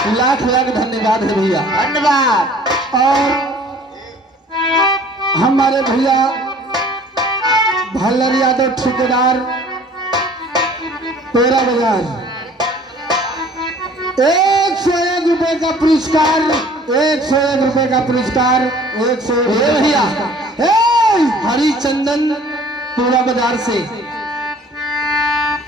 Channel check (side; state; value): both; normal; correlation 0.51